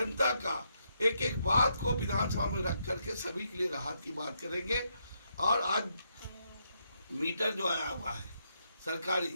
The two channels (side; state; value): both; inverted; correlation -0.78